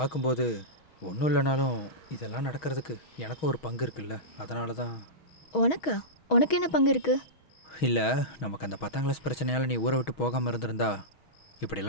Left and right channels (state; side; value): late; right; 6.3 ms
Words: ஒன்றும் இல்லைனாலும் இதெல்லாம் நடக்கிறதுக்கு எனக்கும் ஒரு பங்கு இருக்குல்ல, அதனால தான். உனக்கா? உனக்கு என்ன பங்கு இருக்கு? இல்லை, நமக்கு அந்த 10ஆம் கிளாஸ் பிரச்சனையால் நீ ஊரை விட்டு போகாமல் இருந்திருந்தா